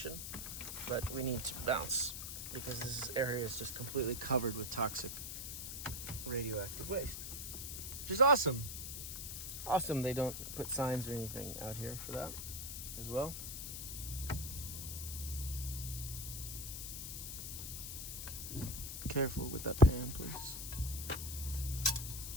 but we need to bounce because this area is just completely covered with toxic radioactive waste, which is awesome. Awesome they don't put signs or anything out here for that as well. Be careful with that pan, please.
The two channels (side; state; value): left; noise; hiss, 6 dB below the sound